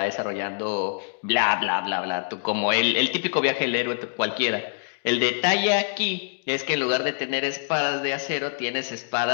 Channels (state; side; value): silent; right; digital silence